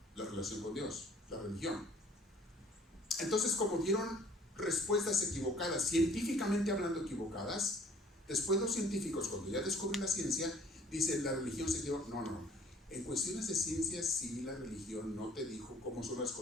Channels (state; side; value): normal; both; correlation 0.55